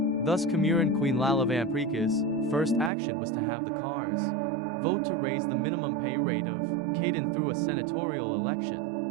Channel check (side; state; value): left; drops out; at 2.9 s